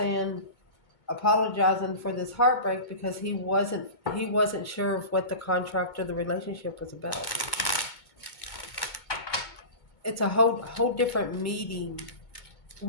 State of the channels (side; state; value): right; late; 2.2 ms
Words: apologizing for this heartbreak because he wasn't sure of what the contract or the relationship was about. It's a whole different meeting.